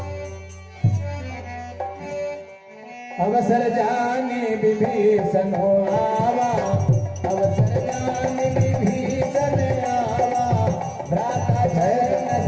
अवसर जाने विभीषण हो आवा, अवसर जाने विभीषण आवा। भ्राता जय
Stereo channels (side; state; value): both; identical; correlation 1.00